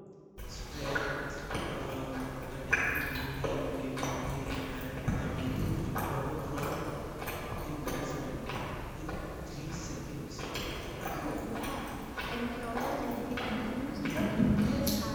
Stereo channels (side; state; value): both; identical; correlation 1.00